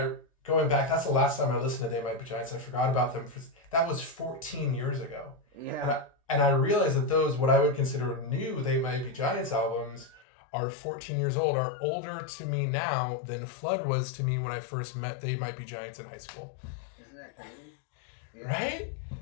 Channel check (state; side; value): drops out; right; at 10.2 s